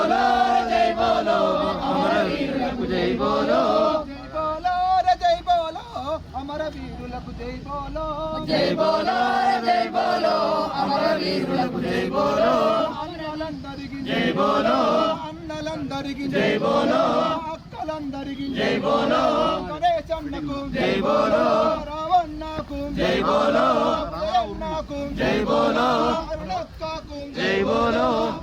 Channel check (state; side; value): identical; both; correlation 1.00